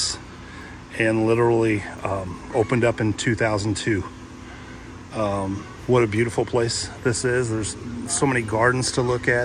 and literally opened up in 2002. What a beautiful place this is. There's so many gardens to look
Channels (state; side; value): identical; both; correlation 1.00